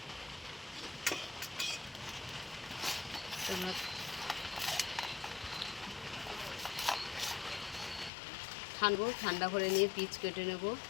তোমরা ঠান্ডা করে নিয়ে পিচ কেটে নেব।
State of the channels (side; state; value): right; drops out; at 8.1 s